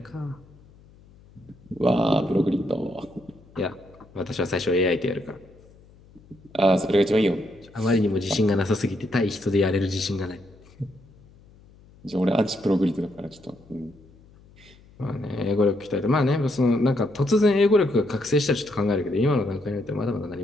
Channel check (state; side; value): noise; left; hum, 26 dB below the sound